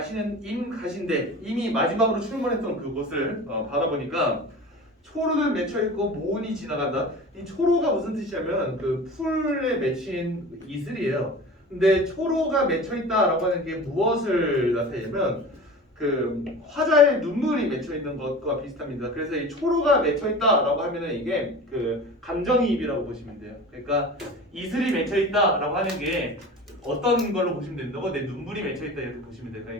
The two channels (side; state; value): both; normal; correlation 0.36